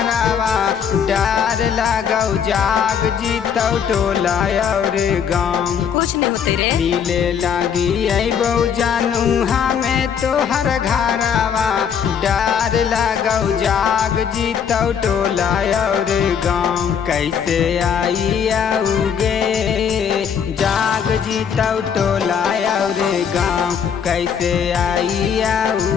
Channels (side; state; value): right; quieter; 7.6 dB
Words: डर लगौ जाग जीतौ टोला और गाँव। कुछ नहीं होते रे। मिले लागी अबो जानू हमें तोहर घरवा डर लगौ जाग जीतौ टोला और गाँव। कैसे आई आओगे जाग जीतौ टोला और गाँव। कैसे आई